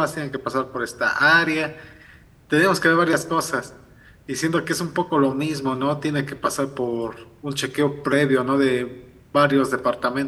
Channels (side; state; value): both; identical; correlation 1.00